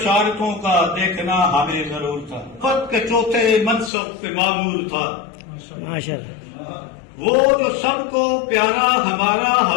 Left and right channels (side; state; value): right; drops out; at 3.9 s